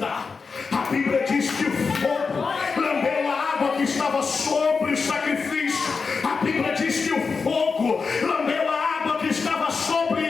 A Bíblia diz que o fogo lambeu a água que estava sobre o sacrifício. A Bíblia diz que o fogo lambeu a água que estava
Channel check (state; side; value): quieter; right; 4.9 dB